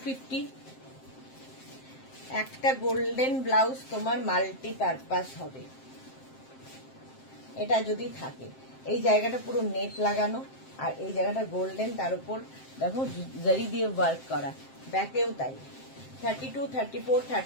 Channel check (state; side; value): late; right; 7.6 ms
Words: একটা গোল্ডেন ব্লাউজ তোমার মাল্টিপারপাস হবে, এটা যদি থাকে। এই জায়গাটা পুরো নেট লাগানো, আর এই জায়গাটা গোল্ডেন, তার উপর দেখো জারি দিয়ে ওয়ার্ক করা, ব্যাকেও তাই। 32, 34,